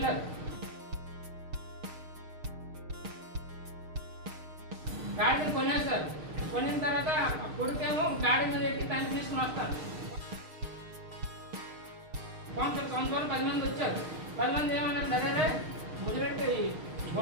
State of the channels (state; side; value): late; left; 6.5 ms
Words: గాడిని కొనేస్తారు. కొనిన తర్వాత కొడుకేమో గాడి మీద ఎక్కి తండ్రి తీసుకుని వస్తారు. సంవత్సరాలు 10 మంది వచ్చారు. 10 మంది ఏమన్నారు, అదే ముదిరెట్టి